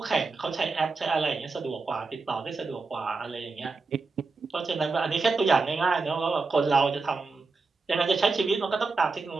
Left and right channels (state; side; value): quieter; left; 4.1 dB